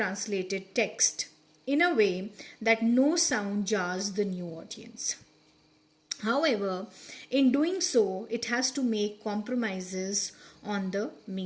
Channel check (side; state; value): both; identical; correlation 1.00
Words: text in a way that no sound jars the new audience. However, in doing so, it has to make compromises on the